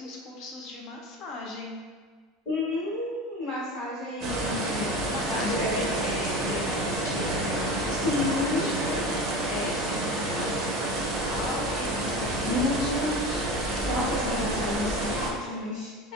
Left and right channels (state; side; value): normal; both; correlation 0.30